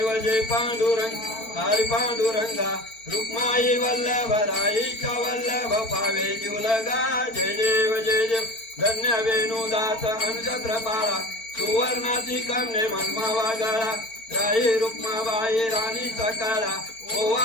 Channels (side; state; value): right; late; 4.4 ms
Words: जय पांडुरंग हरि पांडुरंगा रुक्माई वल्लभ राईच्या वल्लभ पावे जुलगा जय देव धन्य वेणुदास अनुचत्र पाळा सुवर्णाची कामने मनमा वागाळा राई रुक्माबाई राणी सकाळा